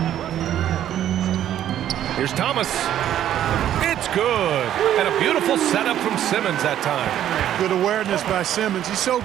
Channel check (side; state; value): left; quieter; 11.2 dB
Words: Here's Thomas. It's good. And a beautiful setup from Simmons that time. Good awareness by Simmons. He's so